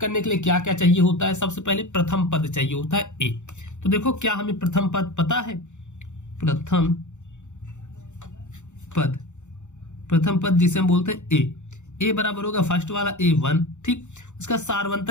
के लिए क्या क्या चाहिए होता है? सबसे पहले प्रथम पद चाहिए होता है ए। तो देखो क्या हमें प्रथम पद पता है? प्रथम पद जिसे हम बोलते हैं ए बराबर होगा फर्स्ट वाला A1। ठीक, उसका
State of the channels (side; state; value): right; late; 0.84 ms